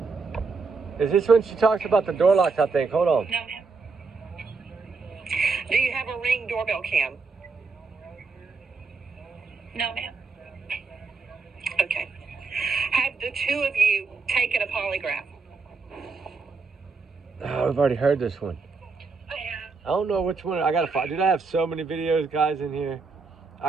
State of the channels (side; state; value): left; quieter; 4.4 dB